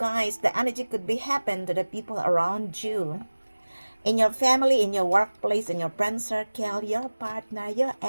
the energy could be happen to the people around you. In your family, in your workplace, in your friend circle, your partner, your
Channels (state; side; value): inverted; both; correlation -1.00